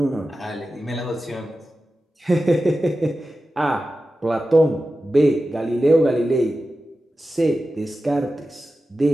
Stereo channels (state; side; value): normal; both; correlation 0.93